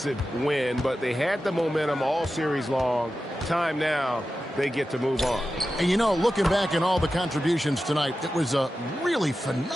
win, but they had the momentum all series long. Time now, they get to move on. And you know, looking back at all the contributions tonight, it was a really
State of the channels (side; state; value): both; normal; correlation 0.92